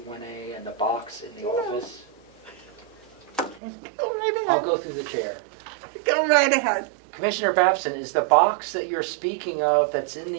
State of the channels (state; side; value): drops out; left; at 3.6 s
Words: and the box in the office? Go right I'll ahead. go through the chair. Go right ahead. Commissioner Babson, is the box that you're speaking of that's in